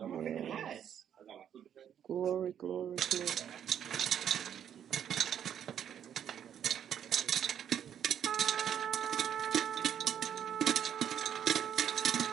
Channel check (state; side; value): quieter; left; 9.3 dB